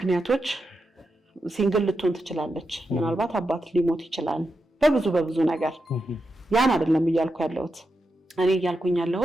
ሲንግል ልትሆን ትችላለች። ምናልባት አባት ሊሞት ይችላል። በብዙ ነገር ያን አይደለም እያልኩ ያለሁት። እኔ እያልኩኝ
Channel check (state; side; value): normal; both; correlation 0.88